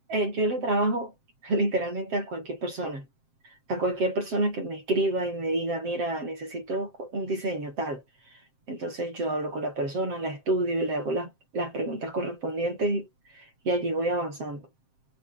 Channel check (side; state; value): left; late; 7.6 ms